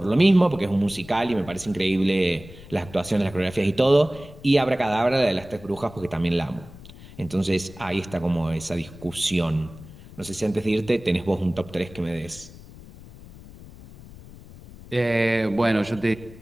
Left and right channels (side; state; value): left; noise; rumble, 18 dB below the sound